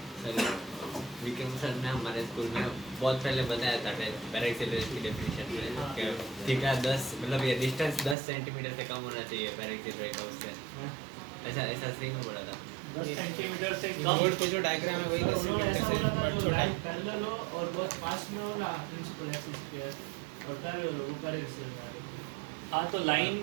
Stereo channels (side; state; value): left; drops out; at 8.2 s